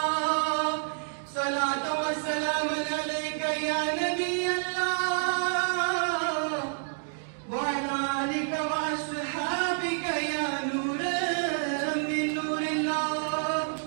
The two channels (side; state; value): left; silent; digital silence